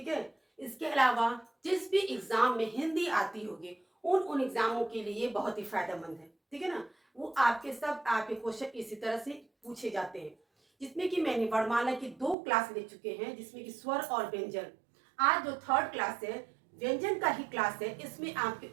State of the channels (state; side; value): drops out; left; at 12.4 s